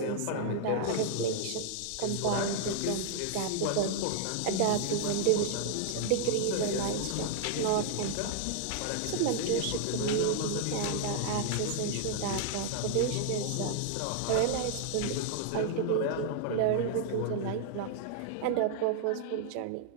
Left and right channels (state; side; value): different; both; correlation 0.00